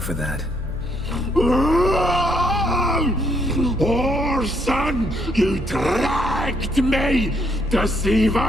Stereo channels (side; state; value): both; normal; correlation 0.71